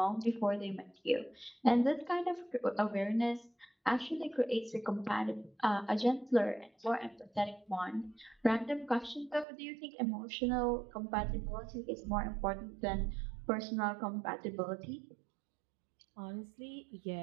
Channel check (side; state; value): left; drops out; at 9.5 s